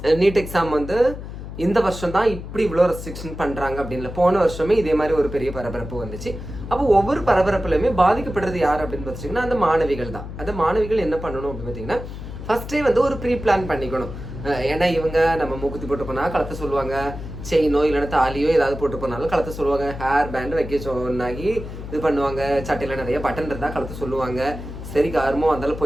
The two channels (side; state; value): left; noise; hum, 10 dB below the sound